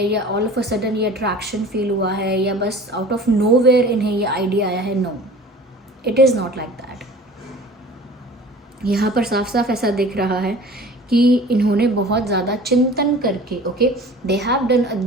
या ऑल ऑफ अ सडन ये अट्रैक्शन फील हुआ है, या बस आउट ऑफ नोवेयर इन्हें ये आइडिया आया है। No, it is not like that. यहाँ पर साफ साफ ऐसा दिख रहा है कि इन्होंने बहुत ज़्यादा चिंतन करके, okay, they have done a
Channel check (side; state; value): both; normal; correlation 0.43